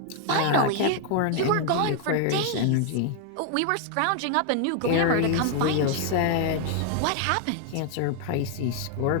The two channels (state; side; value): different; both; correlation 0.00